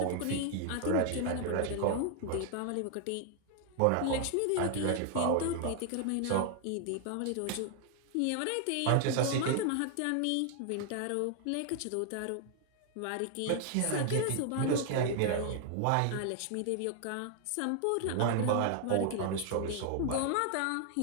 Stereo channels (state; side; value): different; both; correlation 0.00